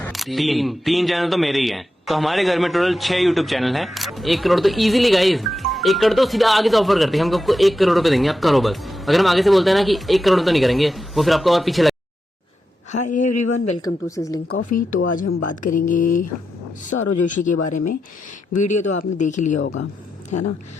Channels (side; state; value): both; normal; correlation 0.88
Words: तीन चैनल तो मेरे ही हैं। तो हमारे घर में टोटल 6 यूट्यूब चैनल हैं। 1 करोड़ तो इजीली गाइस, 1 करोड़ तो सीधा आगे से ऑफर करते हैं, हम आपको 1 करोड़ रुपए देंगे, आप करो बस। अगर हम आगे से बोलते हैं ना कि 1 करोड़ तो नहीं करेंगे, वो फिर आपको और पीछे लगे। Hi everyone, welcome to Sizzling Coffee. तो आज हम बात करेंगे सौरव जोशी के बारे में। वीडियो तो आपने देख ही लिया होगा, है ना?